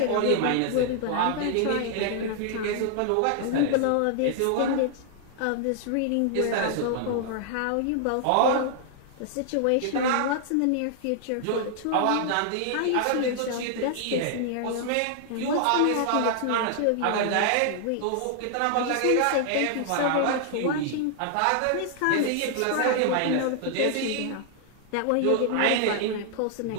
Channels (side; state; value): both; different; correlation 0.00